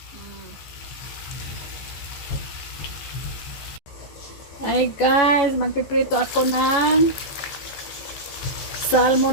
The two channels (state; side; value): late; right; 14 ms